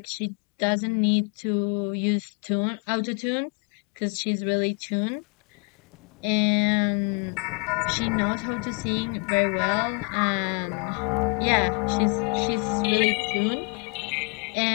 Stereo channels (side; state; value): right; quieter; 36.1 dB